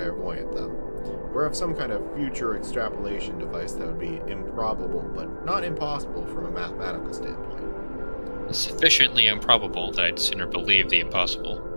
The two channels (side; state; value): both; inverted; correlation -1.00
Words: though. Or have some kind of future extrapolation device that would be improbable, but not impossible from a mathematical standpoint. Sufficiently improbable that I'd sooner believe the impossible.